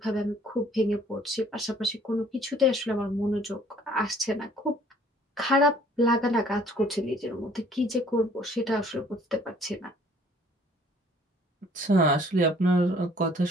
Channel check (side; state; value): both; normal; correlation 0.57